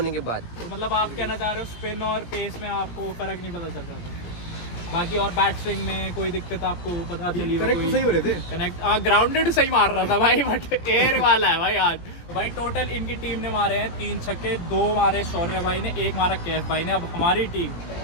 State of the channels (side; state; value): right; late; 17 ms